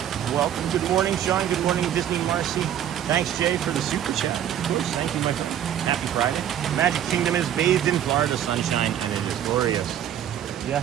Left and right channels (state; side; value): quieter; left; 10.3 dB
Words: Welcome. Good morning, Sean. Good morning, Disney Marcy. Thanks, Jay, for the super chat. Of course. Thank you, my friend. Happy Friday. Magic Kingdom is bathed in Florida sunshine, and it is glorious.